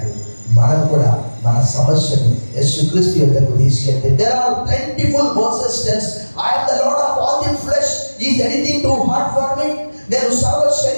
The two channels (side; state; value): both; inverted; correlation -1.00